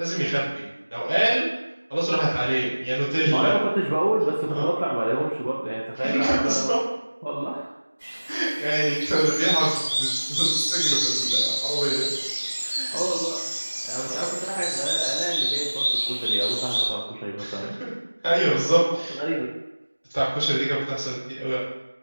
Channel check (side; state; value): both; inverted; correlation -1.00